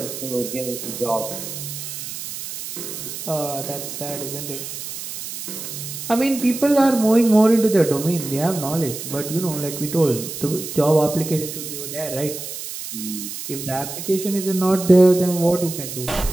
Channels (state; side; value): noise; right; hiss, 8 dB below the sound